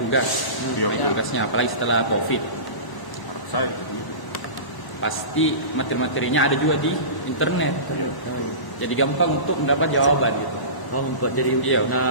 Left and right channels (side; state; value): right; late; 1.0 ms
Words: Iya, betul. Tugasnya apalagi setelah COVID. Harap saya begitu. Pasti materi-materinya ada juga di internet. Iya. Jadi gampang untuk mendapat jawaban gitu. Jadi Iya.